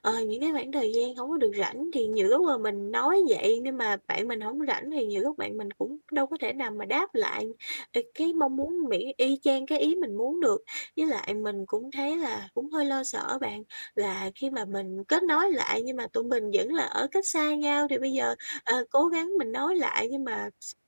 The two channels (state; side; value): inverted; both; correlation -1.00